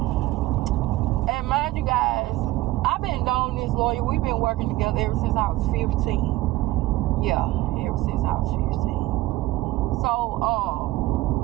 And mind you guys, I've been knowing this lawyer. We've been working together ever since I was 15. Yeah, ever since I was 15. So,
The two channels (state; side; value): quieter; left; 17.3 dB